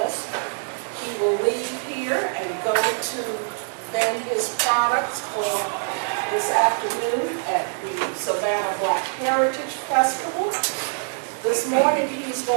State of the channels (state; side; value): silent; left; 63 dB below the other